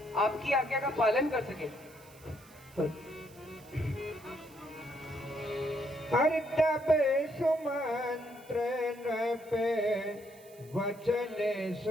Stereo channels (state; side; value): noise; right; hiss, 24 dB below the sound